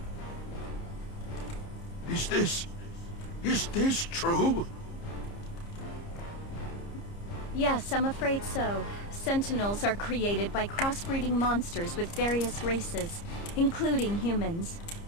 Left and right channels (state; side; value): late; right; 30 ms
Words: Is this true? Yes, I'm afraid so. Sentinels are created by crossbreeding monsters with various races, including humans.